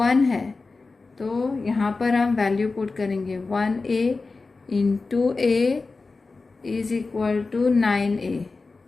है तो यहाँ पर हम वैल्यू पुट करेंगे 1A × A is equal to 9A।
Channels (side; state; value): right; quieter; 3.9 dB